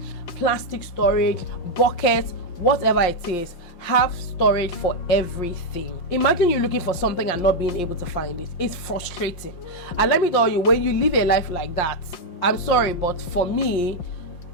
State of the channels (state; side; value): late; right; 5.7 ms